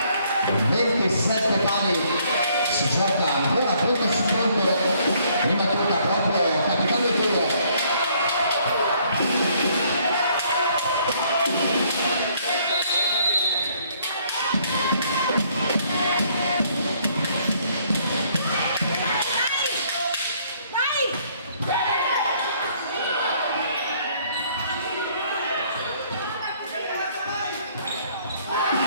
27 pali si gioca ancora punto su punto prima tocca proprio Capitano Toro.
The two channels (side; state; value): both; inverted; correlation -0.65